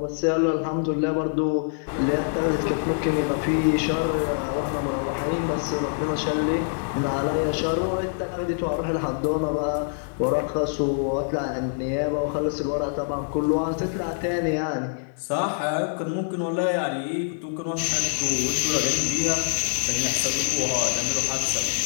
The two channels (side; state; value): right; silent; digital silence